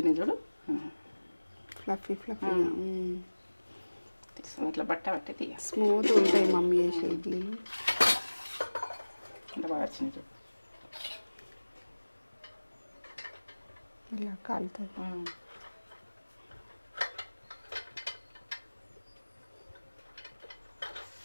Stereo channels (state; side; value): inverted; both; correlation -1.00